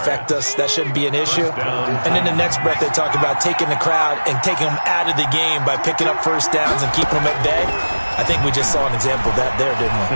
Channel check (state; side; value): inverted; both; correlation -1.00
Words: us. That shouldn't be an issue. And in the next breath, they talk about taking the crowd and taking them out of the game by picking up first downs and keeping them at bay. I think we just saw an example of that there, didn't we?